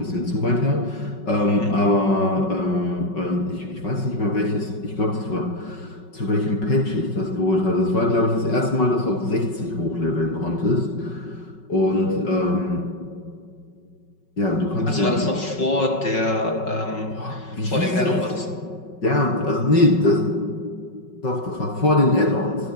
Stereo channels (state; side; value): late; right; 5.4 ms